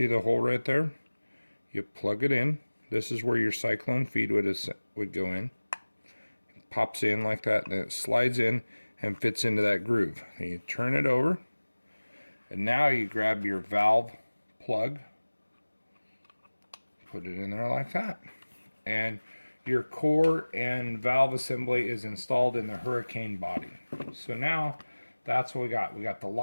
the hole right there? You plug it in. This is where your Cyclone feed would go in. It pops in like that, and then it slides in, and fits into that groove. And you turn it over, and now you grab your valve plug, put it in there like that, and your core and valve assembly is installed in the Hurricane body. So now that's what we got. We got the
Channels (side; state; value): both; inverted; correlation -1.00